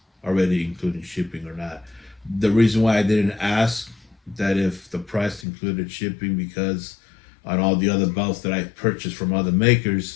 already including shipping or not. The reason why I didn't ask that if the price included shipping, because on all the other belts that I purchased from other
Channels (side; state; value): right; drops out; at 5.5 s